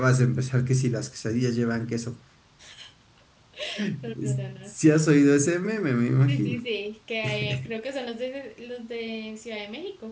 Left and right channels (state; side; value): identical; both; correlation 1.00